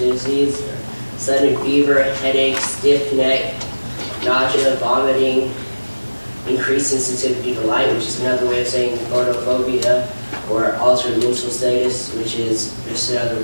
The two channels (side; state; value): both; inverted; correlation -1.00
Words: disease. Sudden fever, headache, stiff neck, nausea, vomiting, increased sensitivity to light, which is another way of saying photophobia, or altered mental status, which is just another